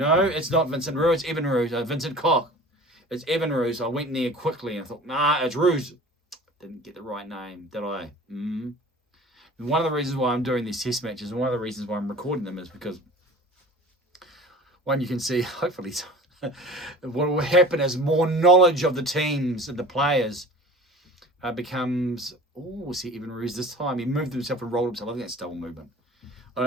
it's not Vincent Roux. It's Evan Roux. Vincent Koch. It's Evan Roux. I went near quickly and I thought, nah, it's Roux. Didn't get the right name, did I? One of the reasons why I'm doing these test matches and one of the reasons why I'm recording them is because one, you can see, hopefully, what will happen as more knowledge of the teams and the players becomes... we'll see Evan Roux this time. He moved himself and rolled himself. I think that's double movement. I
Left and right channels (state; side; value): normal; both; correlation 0.41